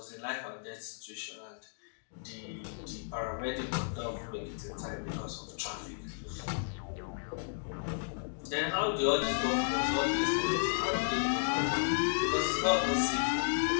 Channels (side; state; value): right; silent; digital silence